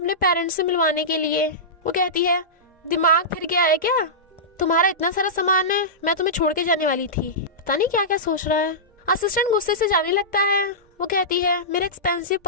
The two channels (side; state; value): both; normal; correlation -0.15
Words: पेरेंट्स से मिलवाने के लिए। वो कहती है दिमाग फिर गया है क्या? तुम्हारा इतना सारा सामान है, मैं तुम्हें छोड़ के जाने वाली थी। पता नहीं क्या क्या सोच रहा है। असिस्टेंट गुस्से से जाने लगता है। वो कहती है मेरा एक्सपेंसिव